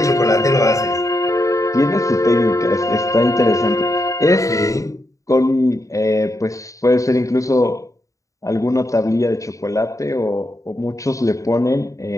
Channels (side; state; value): right; late; 0.16 ms